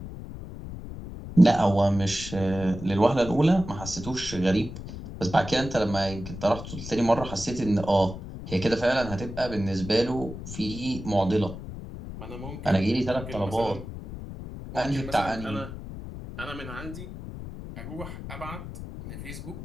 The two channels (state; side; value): noise; left; rumble, 10 dB below the sound